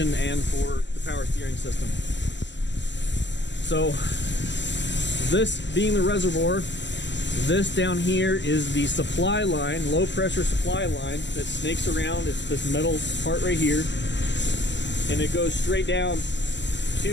and for the power steering system. So this being the reservoir, this down here is the supply line, low pressure supply line that snakes around. It's this metal part right here, and it goes straight down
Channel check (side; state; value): right; late; 0.52 ms